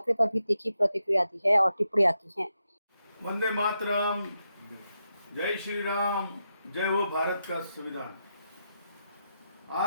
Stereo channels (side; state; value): both; inverted; correlation -0.84